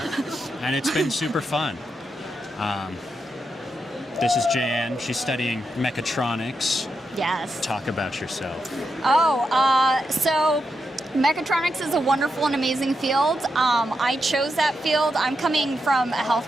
it's been super fun. This is Jan. She's studying mechatronics. Yes. Talk about yourself. So mechatronics is a wonderful and amazing field. I chose that field. I'm coming from a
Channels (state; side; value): normal; both; correlation 0.85